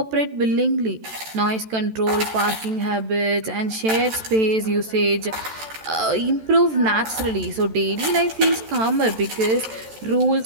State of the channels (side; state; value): left; late; 14 ms